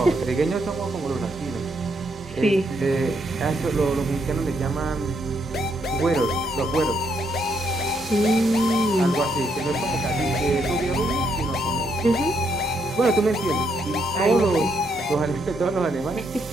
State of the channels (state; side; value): normal; both; correlation 0.75